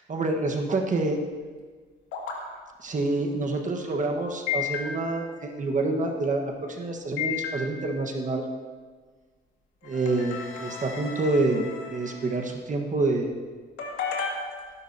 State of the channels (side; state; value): both; normal; correlation 0.49